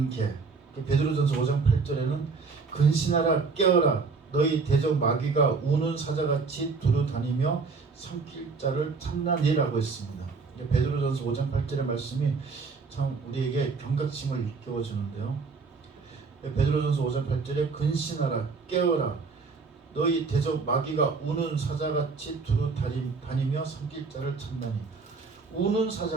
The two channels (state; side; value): quieter; left; 4.6 dB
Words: 베드로전서 5장 8절에는 근신하라 깨어라 너희 대적 마귀가 우는 사자같이 두루 다니며 삼킬 자를 찾나니라고 했습니다. 베드로전서 5장 8절의 말씀이 참 우리에게 경각심을 일깨워주는데요. 베드로전서 5장 8절에 근신하라 깨어라 너희 대적 마귀가 우는 사자같이 두루 다니며 삼킬 자를 찾나니. 우는